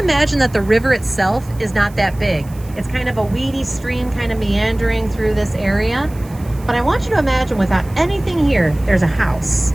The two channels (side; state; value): right; noise; hiss, 24 dB below the sound